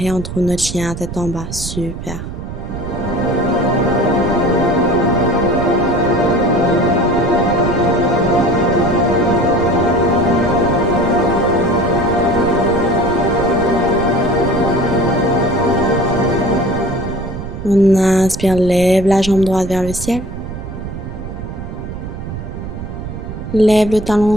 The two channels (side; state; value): right; noise; rumble, 8 dB below the sound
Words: on trouve notre chien tête en bas. Super. On inspire, lève la jambe droite vers le ciel. Lève le